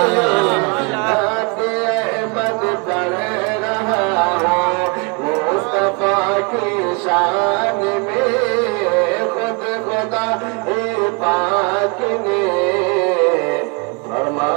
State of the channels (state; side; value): quieter; left; 32.1 dB